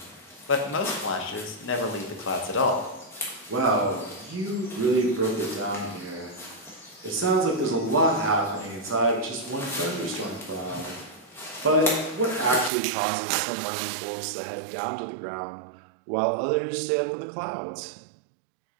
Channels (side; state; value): left; drops out; at 12.7 s